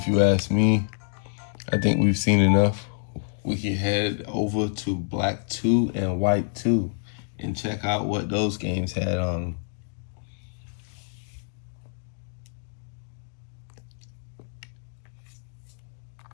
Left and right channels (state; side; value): silent; right; digital silence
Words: you ask me. I think we've seen enough. We can head over to Black 2 and White 2 and check out what those games had on them.